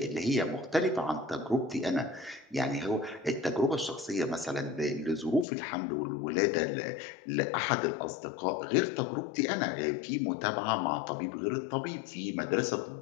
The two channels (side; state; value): right; drops out; at 5.5 s